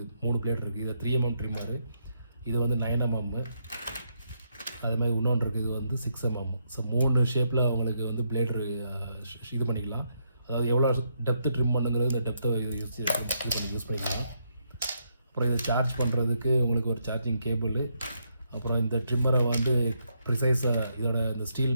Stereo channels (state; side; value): inverted; both; correlation -0.78